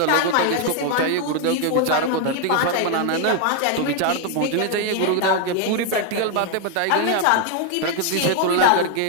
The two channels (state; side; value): different; both; correlation 0.01